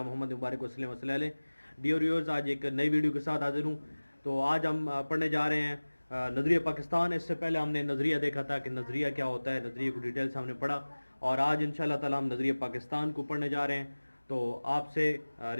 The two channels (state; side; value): inverted; both; correlation -1.00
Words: मोहम्मद मुबारक वसल्लम वसल्लम अलैहि। डियर व्यूअर्स, आज एक नई वीडियो के साथ हाजिर हूँ। तो आज हम पढ़ने जा रहे हैं नज़रिया पाकिस्तान। इससे पहले हमने नज़रिया देखा था कि नज़रिया क्या होता है, नज़रिए को डिटेल से हमने पढ़ा, और आज इंशाअल्लाह ताला हम नज़रिया पाकिस्तान को पढ़ने जा रहे हैं। तो आपसे